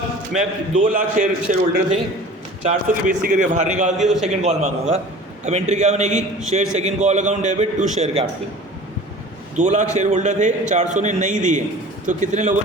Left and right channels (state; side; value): normal; both; correlation 0.42